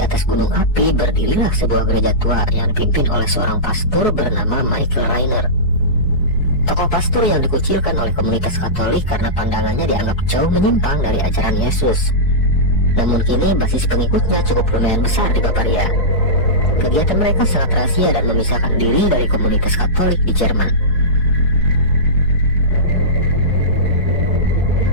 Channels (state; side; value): late; right; 4.7 ms